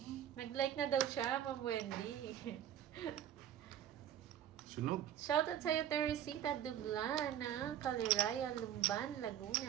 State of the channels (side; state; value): left; quieter; 10.6 dB